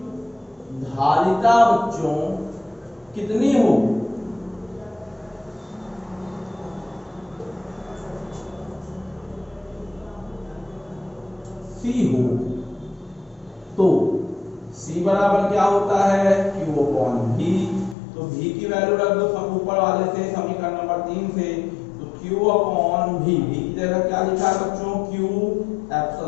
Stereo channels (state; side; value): drops out; right; at 17.9 s